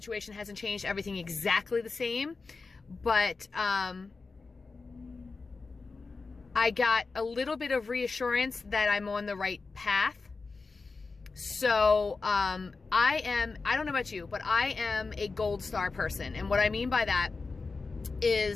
hasn't changed. Everything exactly the same. But I got a little bit of reassurance that I'm on the right path. So, I don't know about you, but I am a gold star person. And what I mean by that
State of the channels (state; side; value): quieter; right; 4.2 dB